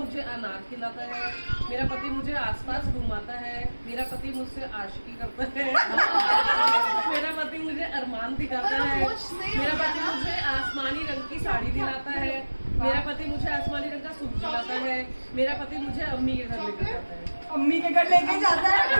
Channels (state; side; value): inverted; both; correlation -1.00